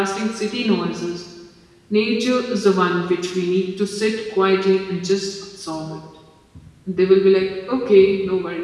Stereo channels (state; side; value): identical; both; correlation 1.00